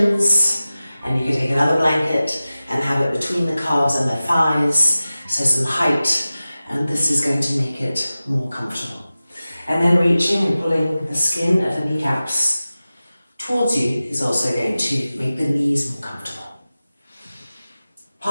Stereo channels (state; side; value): inverted; both; correlation -0.96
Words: and you could take another blanket and have it between the calves and the thighs, so some height, and this is going to make it more comfortable. And then reaching and pulling the skin of the kneecaps towards you is also going to make the knees more comfortable.